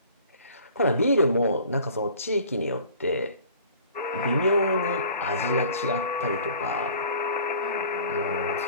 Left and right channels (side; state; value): both; inverted; correlation -0.48